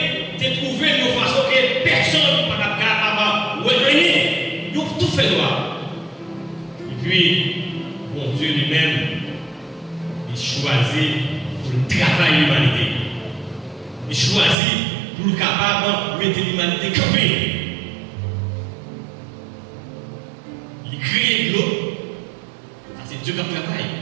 a trouvé une façon que personne ne peut pas capable de revenir, ils ont tout fait noir. Et puis, bon Dieu lui-même, il choisit pour travailler l'humanité. Il choisit pour le capable de mettre l'humanité campée. Il crée de l'eau. Ça, c'est Dieu qui travaille.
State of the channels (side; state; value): left; drops out; at 14.6 s